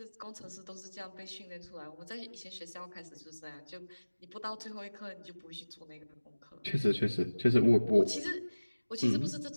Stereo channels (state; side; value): inverted; both; correlation -1.00